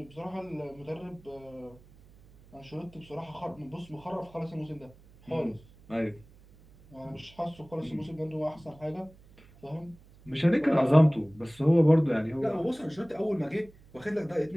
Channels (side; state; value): right; noise; hum, 25 dB below the sound